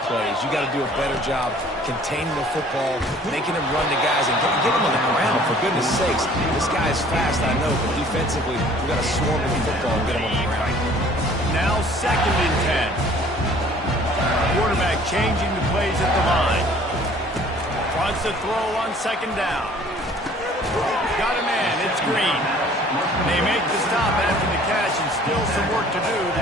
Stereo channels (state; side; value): normal; both; correlation 0.53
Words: plays. You got to do a better job containing the football, making him run the guys, and get him on the ground. For goodness sakes, this guy is fast, I know, but defensively, we got to swarm with the football and get him on the ground. Now 2nd and 10. Quarterback changing the plays at the line. Wants to throw on 2nd down. Got a man. It's Green. They make the stop after the catch, and still some work to do to